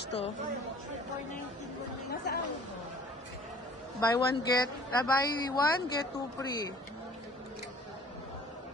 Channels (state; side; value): normal; both; correlation 0.50